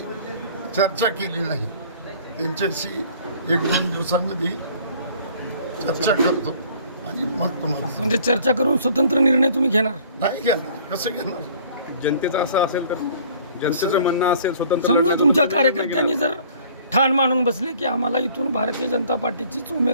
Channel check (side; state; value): both; inverted; correlation -0.53